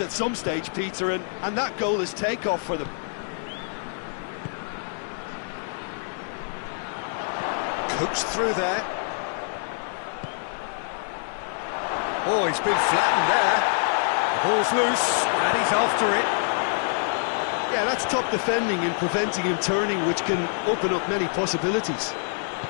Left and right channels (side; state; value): right; silent; digital silence